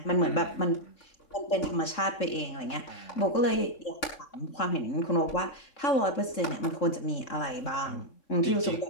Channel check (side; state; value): right; late; 3.6 ms